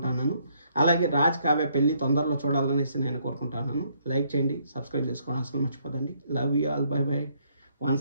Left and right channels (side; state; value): both; inverted; correlation -0.70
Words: అలాగే రాజ్ కావ్య పెళ్లి తొందరలో చూడాలనేసి నేను కోరుకుంటున్నాను. లైక్ చేయండి, సబ్స్క్రైబ్ చేసుకోవడం అసలు మర్చిపోదండి. Love you all, bye bye.